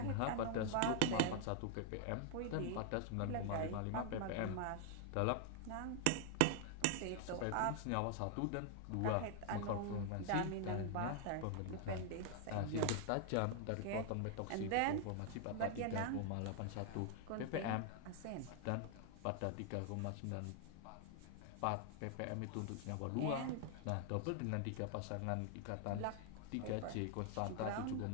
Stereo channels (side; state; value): both; different; correlation 0.00